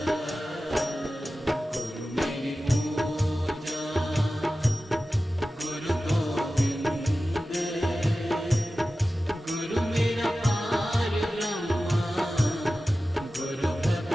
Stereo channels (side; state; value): both; normal; correlation 0.94